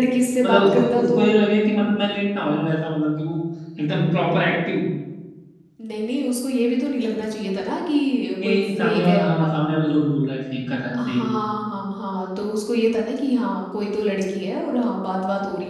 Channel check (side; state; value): both; identical; correlation 1.00